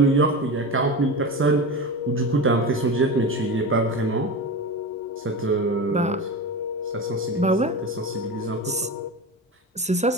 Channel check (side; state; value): both; normal; correlation 0.25